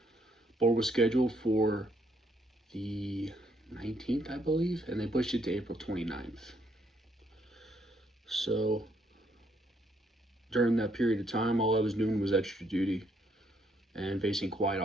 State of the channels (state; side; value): normal; both; correlation 0.71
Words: Board was scheduled for the 19th, I believe, and they pushed it to April 29th. So during that period of time, all I was doing was extra duty and facing quiet